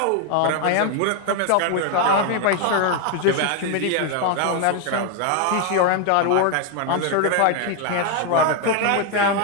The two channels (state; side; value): different; both; correlation 0.01